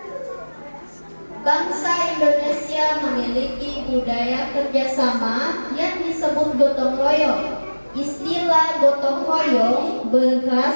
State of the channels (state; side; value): inverted; both; correlation -1.00